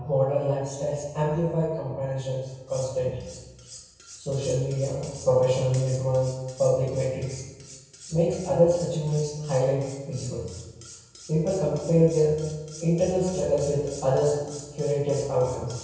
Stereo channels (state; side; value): identical; both; correlation 1.00